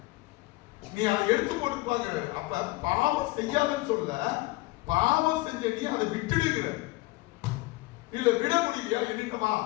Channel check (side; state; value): right; quieter; 21.0 dB